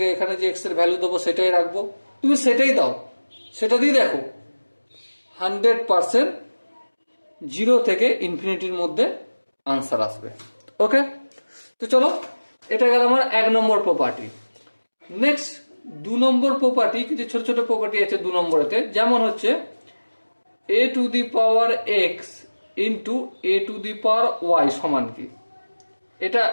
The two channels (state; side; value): inverted; both; correlation -1.00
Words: এখানে যে এক্স এর ভ্যালু দেবো সেটাই রাখবো, তুমি সেটাই দাও, সেটা দিয়ে দেখো 100% 0 থেকে ইনফিনিটির মধ্যে আনসার আসবে। ওকে, তো চলো, এটা গেল আমার 1 নম্বর প্রপার্টি। নেক্সট 2 নম্বর প্রপার্টি, কিছু ছোট ছোট প্রপার্টি আছে 2 নম্বরেতে, যেমন হচ্ছে A to the power X into A to the power Y সমান কি? এটা